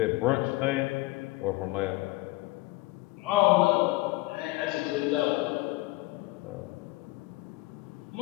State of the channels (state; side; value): quieter; right; 20.7 dB